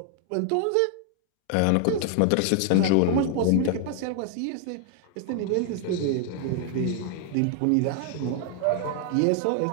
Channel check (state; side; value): different; both; correlation 0.00